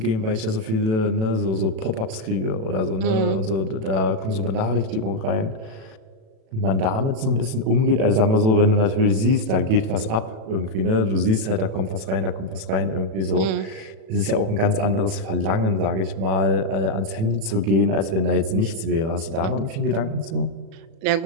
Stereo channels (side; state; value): left; late; 37 ms